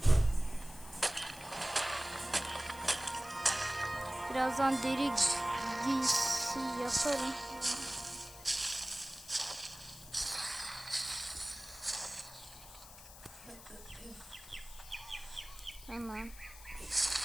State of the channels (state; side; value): noise; left; hiss, 17 dB below the sound